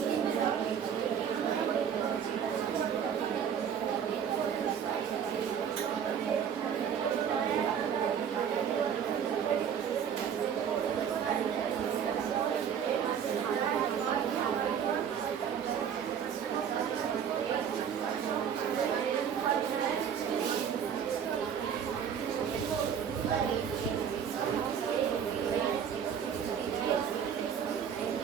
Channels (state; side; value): quieter; left; 8.1 dB